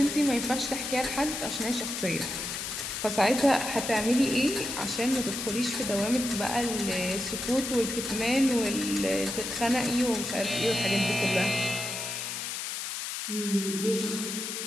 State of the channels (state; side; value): noise; left; hiss, 4 dB below the sound